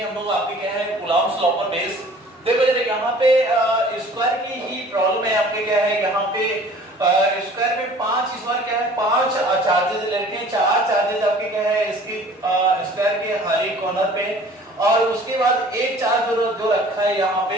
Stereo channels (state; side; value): normal; both; correlation 0.49